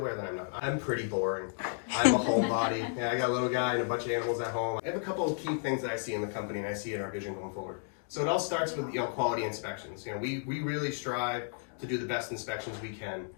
that I'm not. I'm pretty boring. I'm a homebody. I got a little guy and a bunch of animals at home. I have a couple of key things that I see in the company and I see in our vision going forward. So it all starts with quality inspections. We really strive to do the best inspections we can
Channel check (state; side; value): silent; right; digital silence